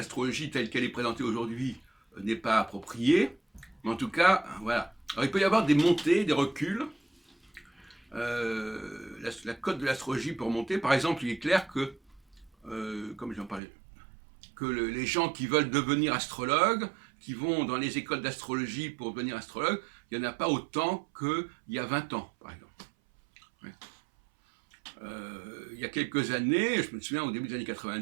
telle qu'elle est présentée aujourd'hui n'est pas appropriée, mais en tout cas, voilà. Alors, il peut y avoir des montées, des reculs. La cote de l'astrologie peut remonter. Par exemple, il est clair que, comme j'en parlais, que les gens qui veulent devenir astrologues, qui vont dans les écoles d'astrologie pour devenir astrologue, il n'y en a pas autant qu'il y a 20 ans, par exemple. Ouais. Il y a quelques années, je me souviens au début des années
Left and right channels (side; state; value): left; drops out; at 13.6 s